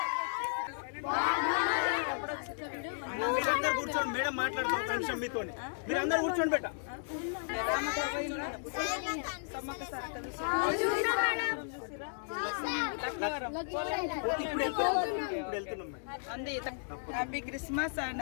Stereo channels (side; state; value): right; silent; digital silence